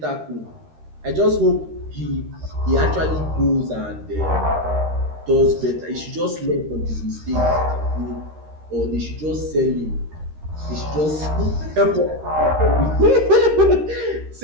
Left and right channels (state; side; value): late; left; 13 ms